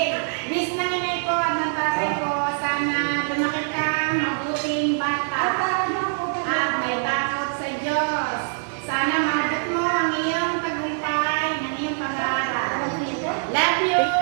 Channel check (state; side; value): silent; left; 63 dB below the other